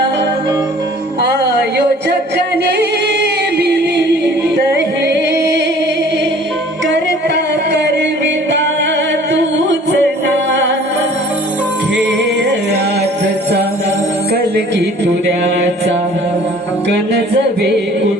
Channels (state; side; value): normal; both; correlation 0.51